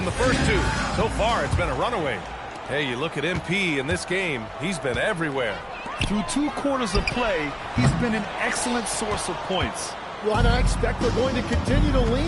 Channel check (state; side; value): identical; both; correlation 1.00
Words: the first 2. So far, it's been a runaway. Hey, you look at MP in this game, he's been everywhere. Through 2 quarters of play, he's been an excellent source of points. Well, and I expect they're going to continue to